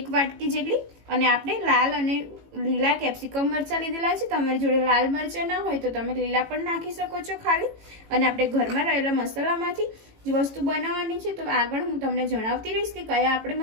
વાટકી જેટલી। અને આપણે લાલ અને લીલા કેપ્સિકમ મરચા લીધેલા છે। તમારી જોડે લાલ મરચા ના હોય તો તમે લીલા પણ નાખી શકો છો ખાલી। અને આપણે ઘરમાં રહેલા મસાલામાંથી જ વસ્તુ બનાવવાની છે, તો આગળ હું તમને જણાવતી રહીશ કે કયા આપણે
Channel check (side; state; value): left; late; 18 ms